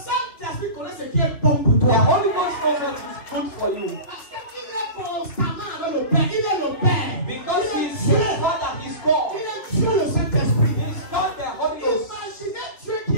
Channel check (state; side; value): late; right; 2.6 ms